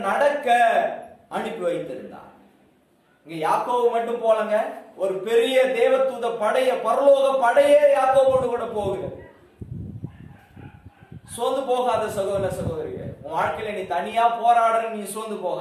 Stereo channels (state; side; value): identical; both; correlation 1.00